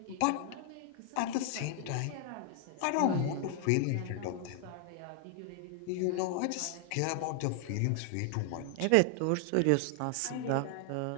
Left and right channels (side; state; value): both; different; correlation 0.00